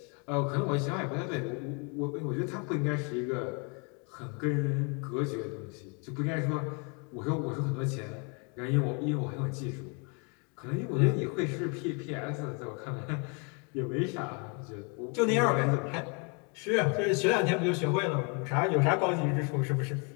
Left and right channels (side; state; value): right; quieter; 34.8 dB